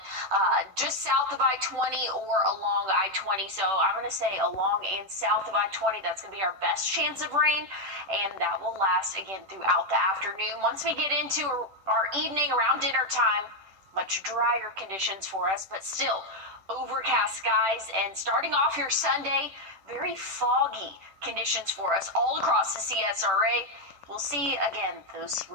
just south of I-20 or along I-20. So I'm going to say along and south of I-20, that's going to be our best chance of rain. And that will last, again, throughout the afternoon. Once we get into our evening around dinner time, much drier conditions for us, but still overcast skies. And starting off your Sunday, very foggy conditions for us all across the CSRA. We'll see, again, those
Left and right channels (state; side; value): late; left; 10 ms